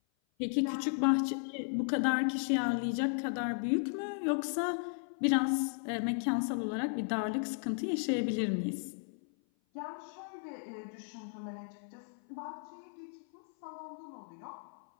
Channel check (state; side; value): silent; right; 54 dB below the other